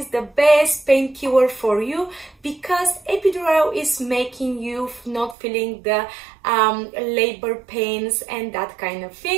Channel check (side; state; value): left; drops out; at 5.4 s